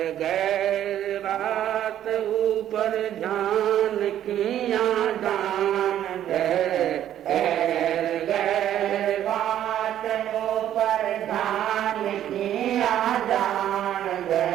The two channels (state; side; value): quieter; left; 11.2 dB